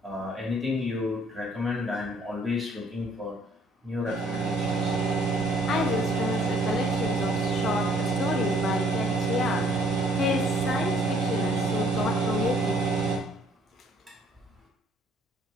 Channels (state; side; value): normal; both; correlation 0.61